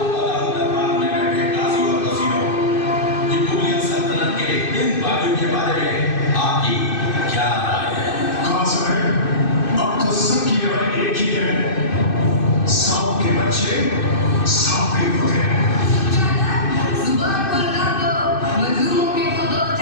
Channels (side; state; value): right; late; 2.6 ms